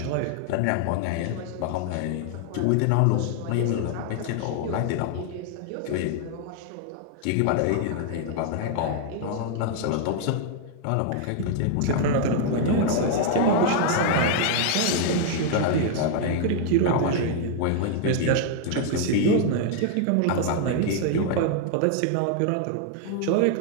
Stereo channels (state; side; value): different; both; correlation 0.00